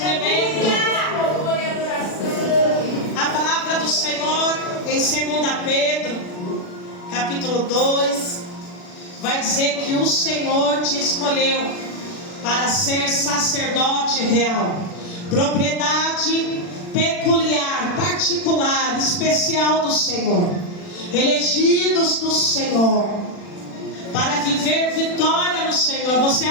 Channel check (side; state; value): right; late; 40 ms